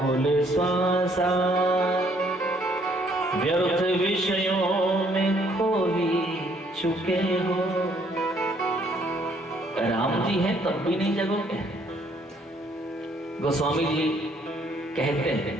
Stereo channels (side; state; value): both; normal; correlation 0.65